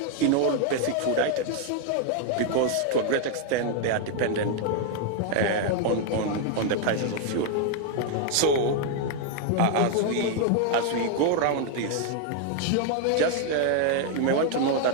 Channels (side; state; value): both; different; correlation 0.00